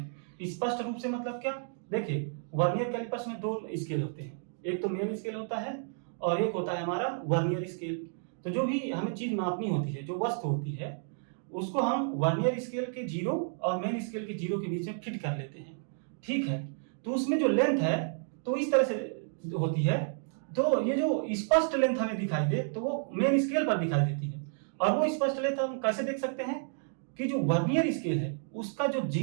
स्पष्ट रूप से मतलब क्या? देखिए, वर्नियर कैलिपर्स में दो स्केल होते हैं, एक तो मेन स्केल होता है और एक होता है हमारा वर्नियर स्केल। तो जो भी हमें चीज मापनी होती है, जो वस्तु होती है, उसको हम वर्नियर स्केल के 0 और मेन स्केल के 0 के बीच में फिट कर लेते हैं, ठीक है। तो उसमें जो लेंथ है तो इस तरह से होती है। तो ये जो स्पष्ट लेंथ हमें दिखाई दे तो वो मेन स्केल पर दिखाई देती है। और वो स्पष्ट लेंथ हम कैसे देख सकते हैं कि जो वर्नियर स्केल है उसका जो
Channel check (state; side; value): silent; left; digital silence